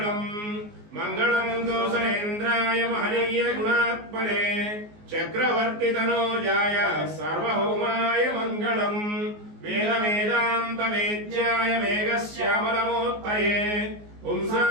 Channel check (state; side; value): late; left; 19 ms